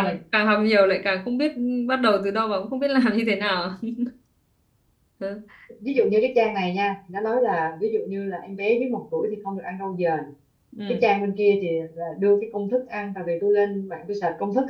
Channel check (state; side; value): identical; both; correlation 1.00